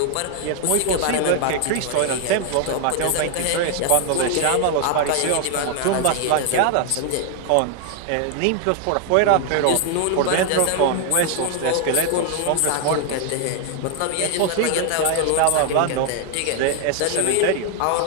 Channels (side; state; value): both; different; correlation 0.00